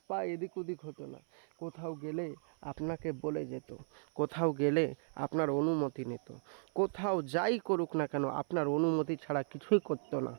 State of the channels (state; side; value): silent; left; 54 dB below the other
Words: পা এদিক ওদিক হতো না। কোথাও গেলে আপনাকে বলে যেত, কোথাও গেলে আপনার অনুমতি নিত, কোথাও যাই করুক না কেন আপনার অনুমতি ছাড়া কিছুই করতো না।